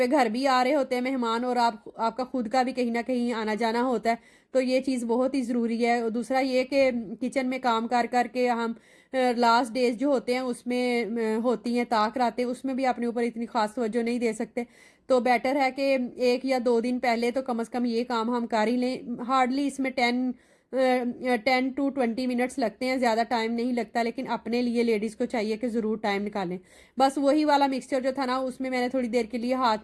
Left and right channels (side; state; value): both; identical; correlation 1.00